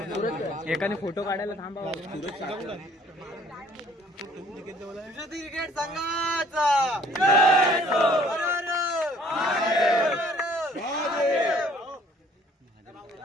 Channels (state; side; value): normal; both; correlation 0.58